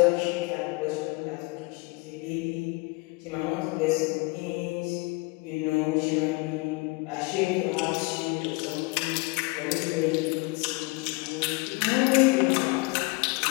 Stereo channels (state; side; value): quieter; right; 26.4 dB